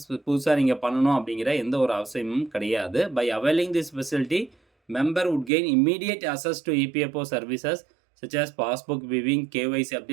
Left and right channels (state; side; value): drops out; left; at 5.5 s